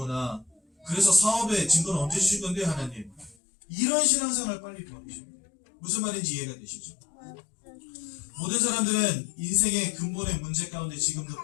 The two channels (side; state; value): right; drops out; at 3.4 s